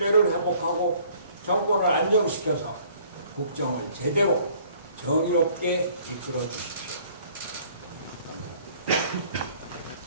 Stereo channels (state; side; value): inverted; both; correlation -0.57